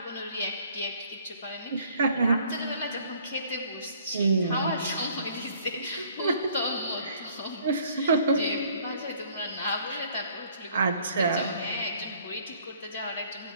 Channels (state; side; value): inverted; both; correlation -0.58